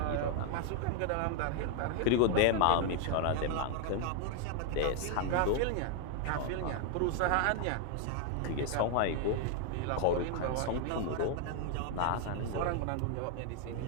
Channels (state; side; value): different; both; correlation 0.00